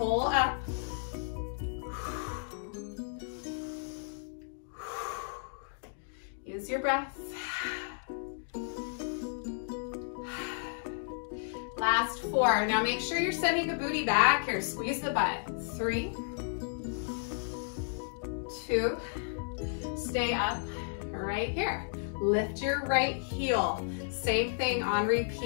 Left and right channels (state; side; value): silent; right; digital silence